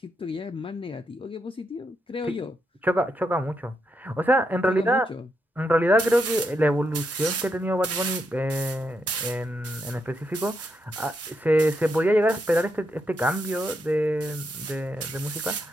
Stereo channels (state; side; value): normal; both; correlation 0.81